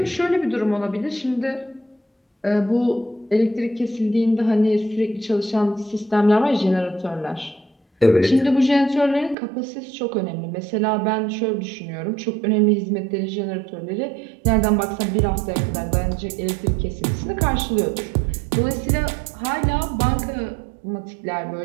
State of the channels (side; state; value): left; drops out; at 9.3 s